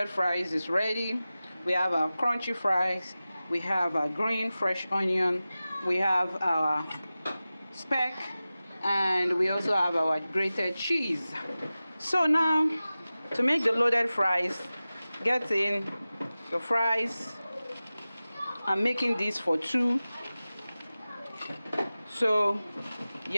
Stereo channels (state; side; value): inverted; both; correlation -0.96